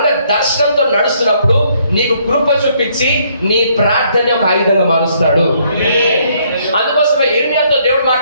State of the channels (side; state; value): both; inverted; correlation -0.68